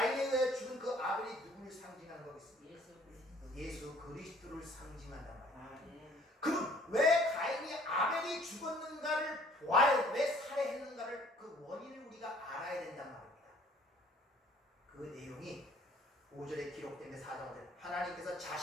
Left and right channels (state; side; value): normal; both; correlation 0.57